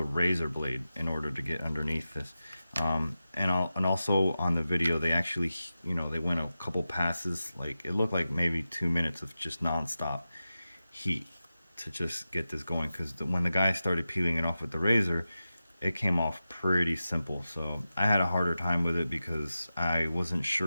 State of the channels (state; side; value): inverted; both; correlation -0.93